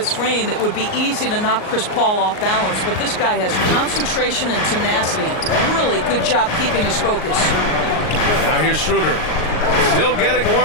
frame it would be easy to knock Chris Paul off balance, but this guy has concentration and tenacity. Really good job keeping his focus. Now here's Schroeder. Still getting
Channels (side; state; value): right; late; 38 ms